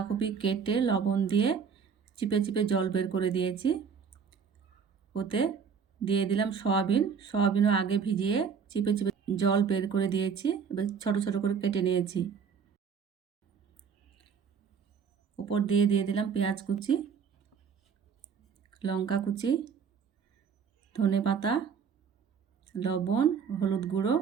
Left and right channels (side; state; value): left; quieter; 6.5 dB